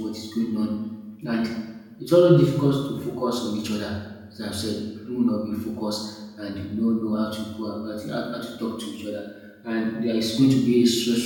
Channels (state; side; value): identical; both; correlation 1.00